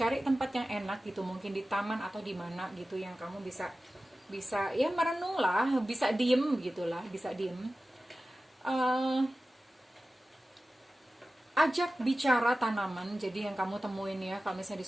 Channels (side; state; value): both; normal; correlation 0.95